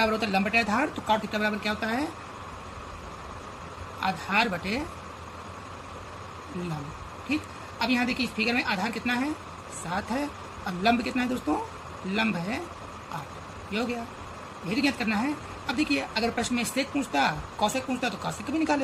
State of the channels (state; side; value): identical; both; correlation 1.00